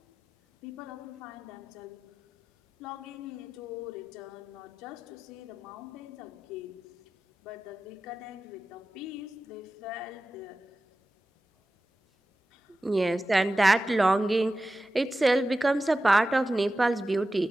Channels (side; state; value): both; normal; correlation 0.94